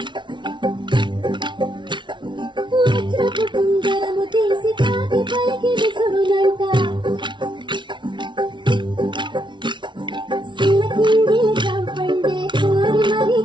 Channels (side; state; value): left; late; 0.23 ms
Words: కుందరము తీసి కాకి పైకి విసురునంట సిల్లకింది చంపండే కోరి మరి